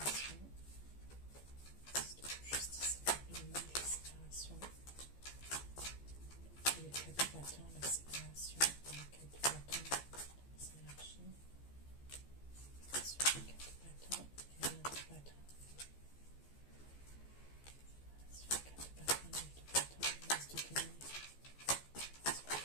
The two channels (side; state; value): right; late; 15 ms